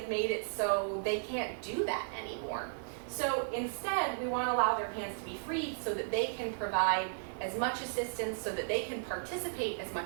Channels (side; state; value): left; silent; digital silence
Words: made it so they can't do that anymore. So instead, we want to allow their hands to be free so that they can provide as much assistance, so that they can participate as much